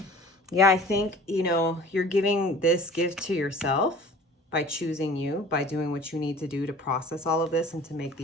Yeah, I think, you're giving this gift to yourself by choosing you, by doing what you need to do to process all of this and to make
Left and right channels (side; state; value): both; normal; correlation 0.45